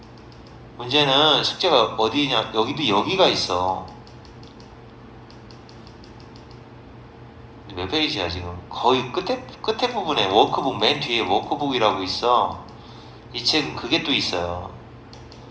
문제는 숙제가 어디냐, 여기도 여기가 있어. 몇 페이지야 지금? 거의 끝에 부분에 워크북 맨 뒤에 워크북이라고 있어. 이 책은 그게 또 있어요.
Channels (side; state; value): both; identical; correlation 1.00